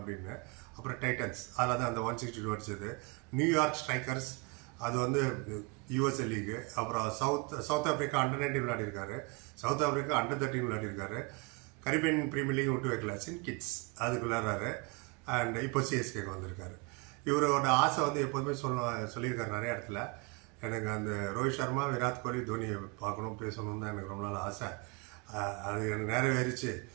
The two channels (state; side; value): quieter; left; 28.9 dB